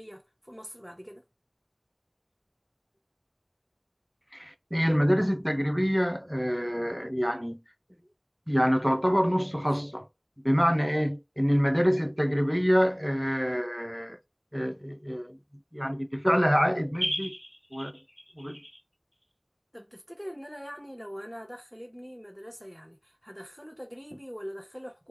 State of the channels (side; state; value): both; identical; correlation 1.00